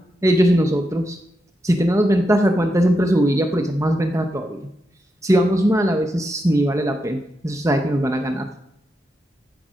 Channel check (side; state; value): both; normal; correlation 0.85